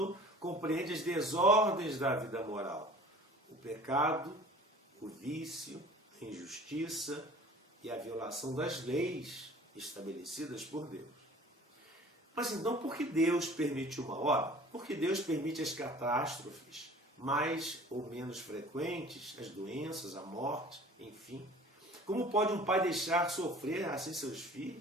compreende as desordens da vida moral, o pecado, o vício, a injustiça e a violação das leis estabelecidas por Deus. Mas então, por que Deus permite o mal? Ora, porque Deus permite as catástrofes mais ou menos frequentes, as doenças, a morte, enfim. Como pode um pai deixar sofrer assim seus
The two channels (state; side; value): normal; both; correlation 0.46